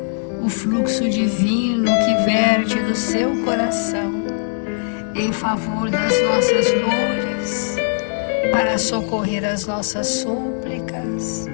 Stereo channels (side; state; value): right; silent; digital silence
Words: o fluxo divino que verte do seu coração em favor das nossas dores, para socorrer as nossas súplicas,